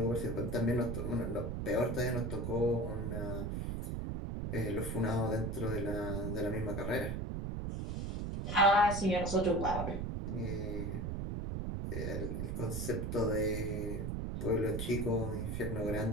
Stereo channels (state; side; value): noise; right; rumble, 3 dB below the sound